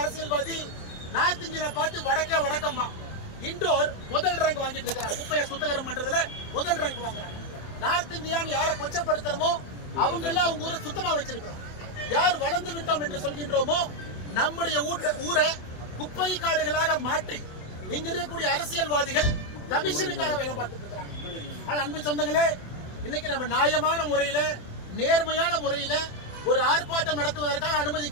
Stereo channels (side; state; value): right; late; 27 ms